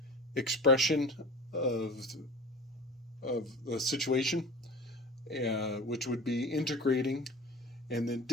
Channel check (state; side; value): normal; both; correlation 0.37